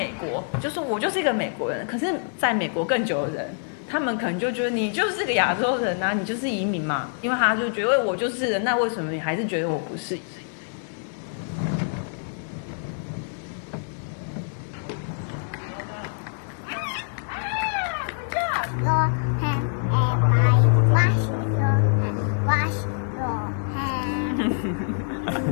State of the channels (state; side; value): silent; right; digital silence